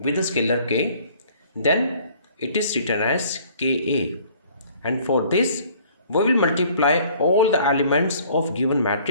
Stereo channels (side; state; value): both; inverted; correlation -0.55